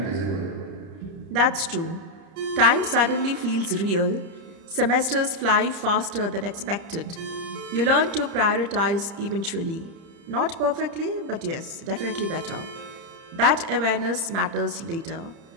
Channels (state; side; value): late; left; 30 ms